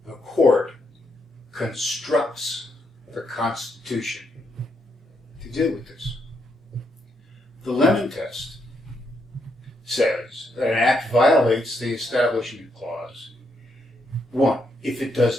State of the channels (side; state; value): both; normal; correlation 0.78